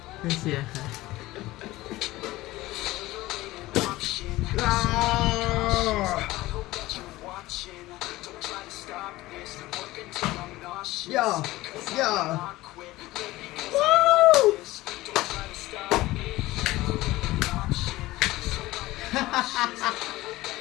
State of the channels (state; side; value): quieter; right; 18.1 dB